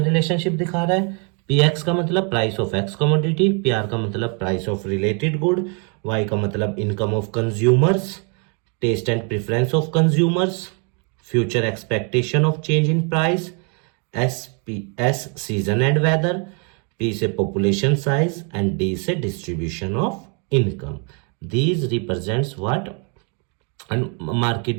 रिलेशनशिप दिखा रहा है, px का मतलब price of x commodity, pr का मतलब price of related good, y का मतलब income of consumers, taste and preference of consumers, future expectation of change in price, S season and weather, P से पॉपुलेशन साइज एंड डी से distribution of income. These represents what, market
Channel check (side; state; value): left; quieter; 37.0 dB